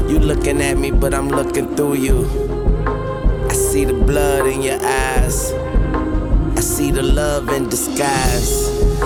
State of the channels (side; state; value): both; identical; correlation 1.00